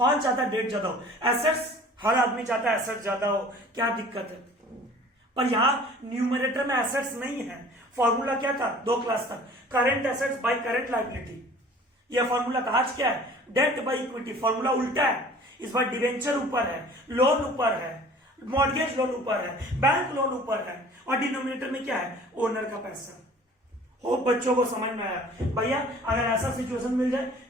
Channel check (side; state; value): both; normal; correlation 0.48